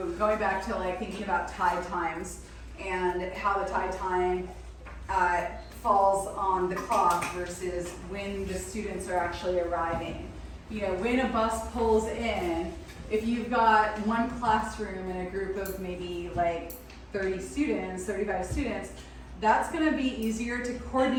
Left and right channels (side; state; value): both; identical; correlation 1.00